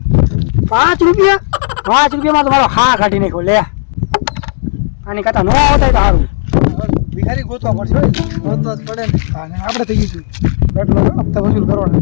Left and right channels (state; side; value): silent; right; digital silence